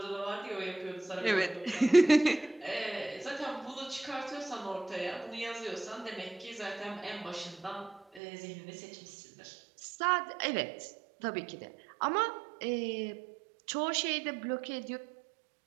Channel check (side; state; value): left; drops out; at 8.2 s